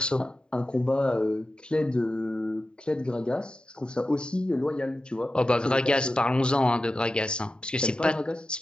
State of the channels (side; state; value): right; late; 0.048 ms